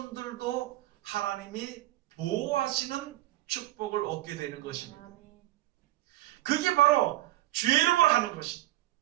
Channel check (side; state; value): left; quieter; 16.3 dB